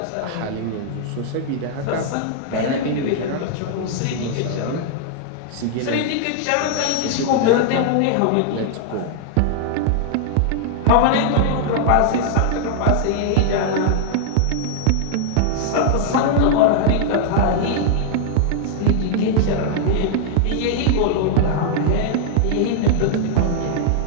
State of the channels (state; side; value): different; both; correlation 0.00